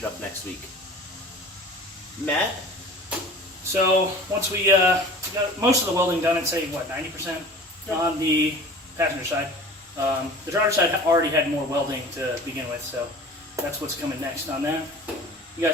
up next week. Matt? So once we got most of the welding done, I'd say, what, 90% on the passenger side. The driver's side already had more welding to begin with, so that's what's coming next on that. You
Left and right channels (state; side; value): normal; both; correlation 0.41